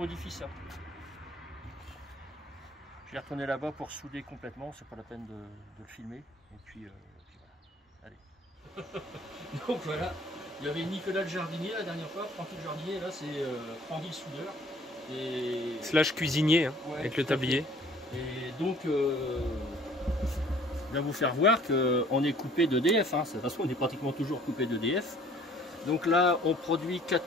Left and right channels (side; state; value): both; normal; correlation 0.54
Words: ça. Je vais retourner là-bas pour souder complètement, c'est pas la peine de le filmer. Et puis voilà. Allez. Donc voilà, il y avait Nicolas le jardinier la dernière fois, Francky le jardinier, là c'est Francky le soudeur. Et... Slash cuisinier, hein, ouais, avec le tablier. Et donc, je vais vous faire voir qu'on est coupé d'EDF. Hein. De toute façon, on est pratiquement toujours coupé d'EDF. Donc là, on produit